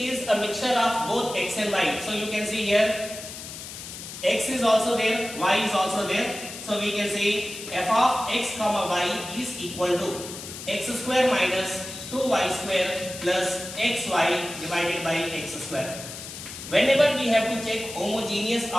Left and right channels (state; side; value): noise; left; hiss, 11 dB below the sound